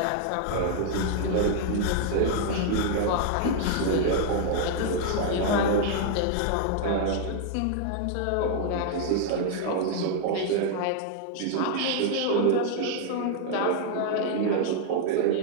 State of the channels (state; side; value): different; both; correlation 0.00